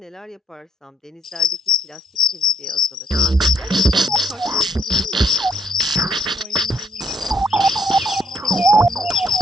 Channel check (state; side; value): normal; both; correlation 0.70